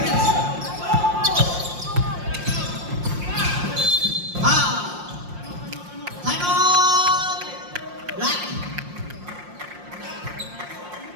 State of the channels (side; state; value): left; late; 5.7 ms